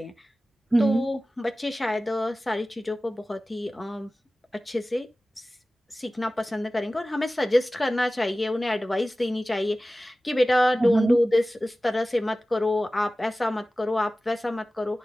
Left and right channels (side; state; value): both; normal; correlation 0.96